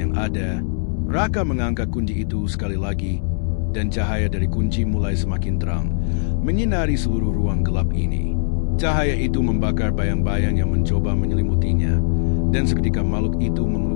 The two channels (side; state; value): right; silent; digital silence